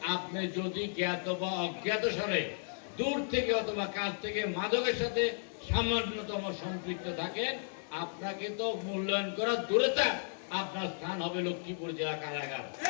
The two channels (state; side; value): silent; right; digital silence